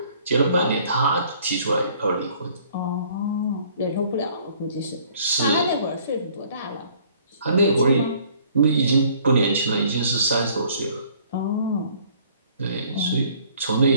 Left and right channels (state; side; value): inverted; both; correlation -0.58